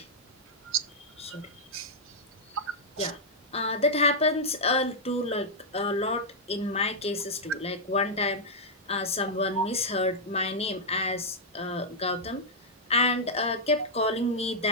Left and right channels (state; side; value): normal; both; correlation -0.06